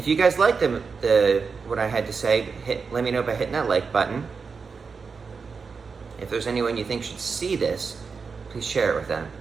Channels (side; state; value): left; quieter; 5.2 dB